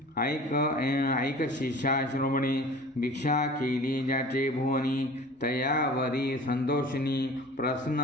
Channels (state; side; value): normal; both; correlation 0.42